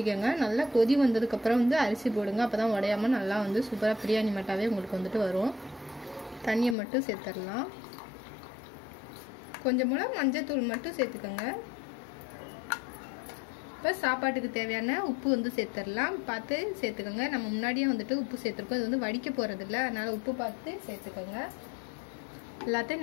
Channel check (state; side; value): drops out; right; at 6.8 s